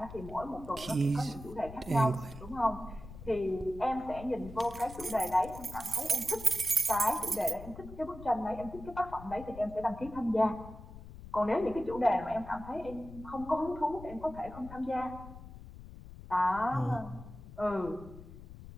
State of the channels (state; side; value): noise; left; rumble, 15 dB below the sound